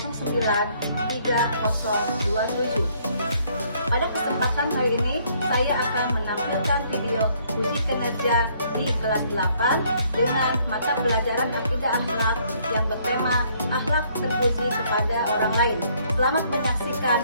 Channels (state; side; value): inverted; both; correlation -0.65